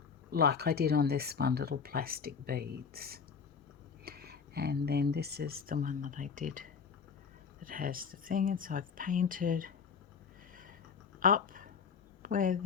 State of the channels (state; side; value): quieter; right; 6.1 dB